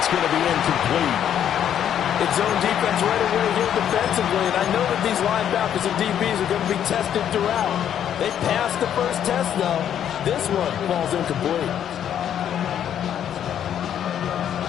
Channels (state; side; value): quieter; right; 9.7 dB